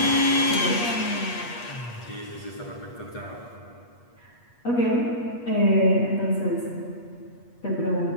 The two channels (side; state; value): right; late; 8.3 ms